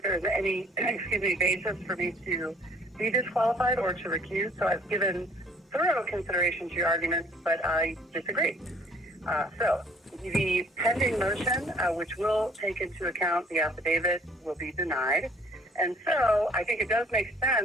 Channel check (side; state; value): both; normal; correlation 0.57